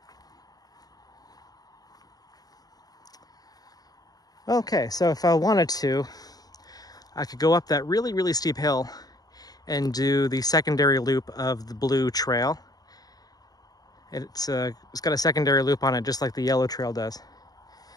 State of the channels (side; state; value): right; late; 0.18 ms